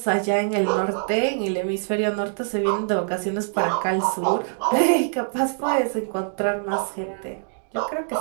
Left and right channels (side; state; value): left; silent; digital silence